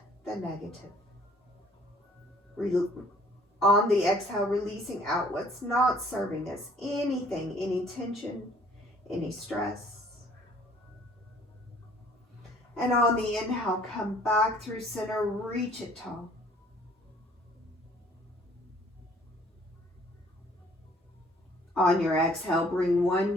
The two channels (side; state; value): both; normal; correlation 0.57